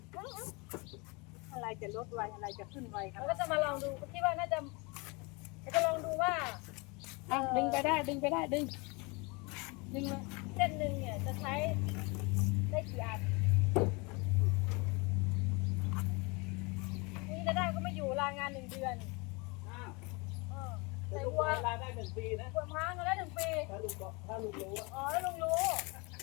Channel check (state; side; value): quieter; right; 28.2 dB